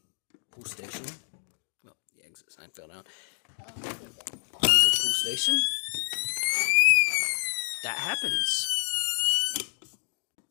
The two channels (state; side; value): silent; right; 59 dB below the other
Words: pool station, well, the exit sign fell down. Pull the pool station, that happens.